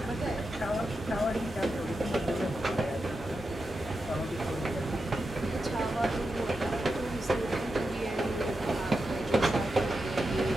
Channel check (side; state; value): both; normal; correlation 0.88